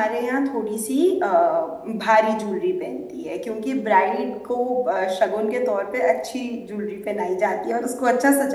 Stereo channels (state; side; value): identical; both; correlation 1.00